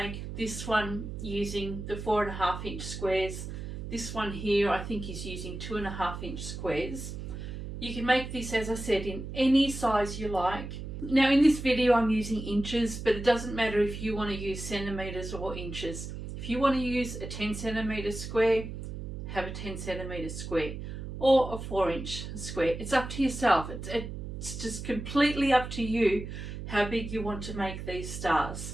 this one using the 4.5 inch squares. This one here I think is using 2.5 inch squares. You can make this, as I said, in any size you like. Now in this video I'm using inches, but it doesn't matter if you want to use centimetres or inches. If you want to use a 10 centimetre square, have a 10 centimetre square, or a 4 inch square. It's up to yourself. It's just completely up to you how big you want to make these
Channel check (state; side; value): noise; right; hum, 8 dB below the sound